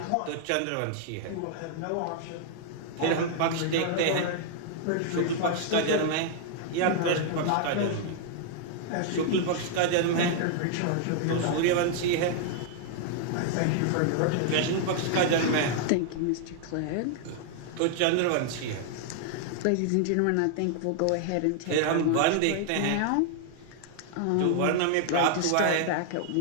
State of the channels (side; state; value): both; different; correlation 0.00